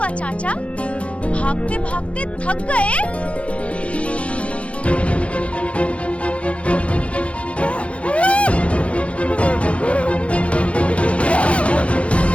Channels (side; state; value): right; late; 0.062 ms